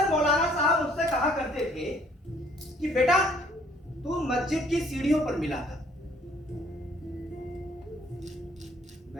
मौलाना साहब मुझसे कहा करते थे कि बेटा तू मस्जिद की सीढ़ियों पर मिला था।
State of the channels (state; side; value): normal; both; correlation 0.61